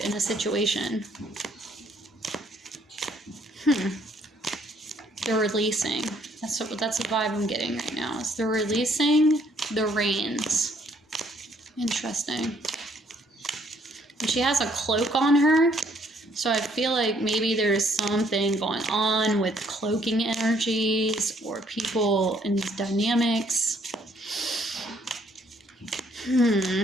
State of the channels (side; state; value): both; normal; correlation 0.66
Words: a situation. They're releasing. That's the vibe I'm getting right now. Is they're releasing the reins. Interesting. And she has a cloak on her. So I feel like maybe there's something going on with cloaking energies or people in these dynamics.